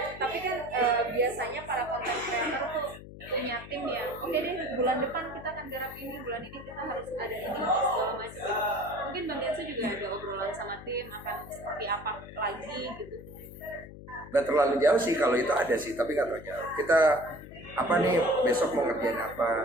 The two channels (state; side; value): noise; left; hum, 15 dB below the sound